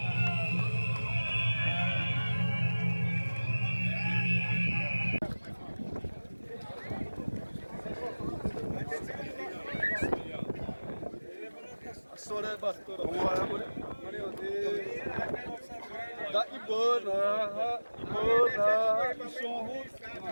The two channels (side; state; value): both; inverted; correlation -1.00